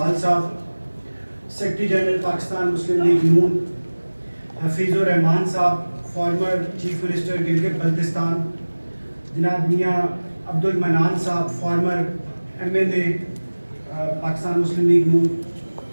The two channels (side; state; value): both; inverted; correlation -1.00